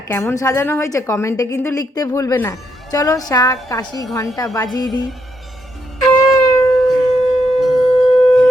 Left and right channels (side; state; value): both; normal; correlation 0.78